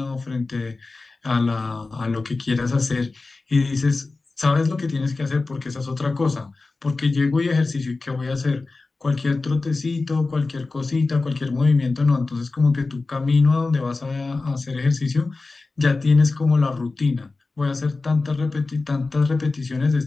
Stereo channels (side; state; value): right; quieter; 3.6 dB